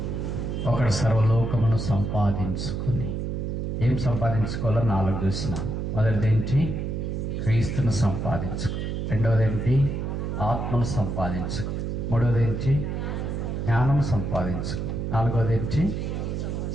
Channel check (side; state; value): right; noise; hum, 2 dB below the sound